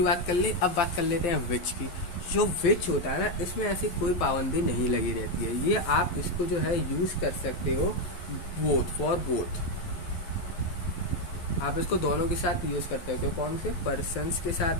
बात कर ले, अब बात कर लेते हैं विच की। जो विच होता है ना, इसमें ऐसी कोई पाबंदी नहीं लगी रहती है, ये आप इसको जो है यूज़ कर सकते हो बोथ, फॉर बोथ। आप इसको दोनों के साथ यूज़ करते हो, कौन से, पर्सन्स के साथ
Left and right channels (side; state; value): right; late; 11 ms